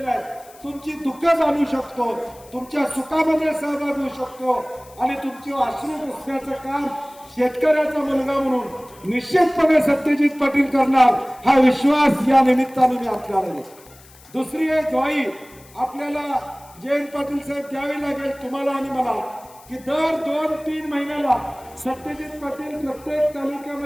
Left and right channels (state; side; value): noise; left; hiss, 24 dB below the sound